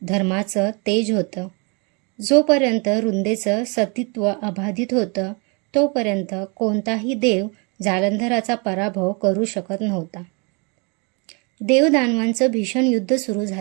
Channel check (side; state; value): left; quieter; 32.4 dB